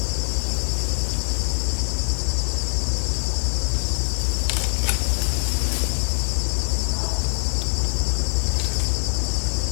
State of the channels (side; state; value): right; silent; 63 dB below the other